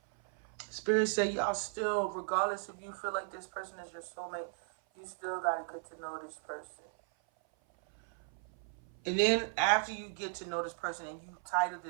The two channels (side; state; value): left; silent; 54 dB below the other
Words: Spirit said y'all still, regardless if you feel like this person is your soulmate, you still gotta get to know this person. And then after you get to know this person and you title